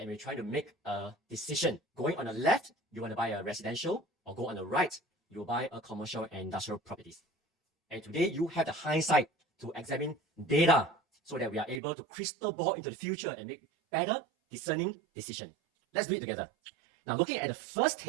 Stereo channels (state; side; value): drops out; left; at 11.8 s